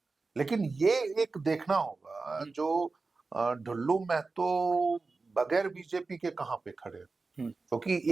लेकिन ये एक देखना होगा जो ढुल्लू महतो बगैर बीजेपी के कहां पे खड़े, क्योंकि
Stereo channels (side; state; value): left; quieter; 3.9 dB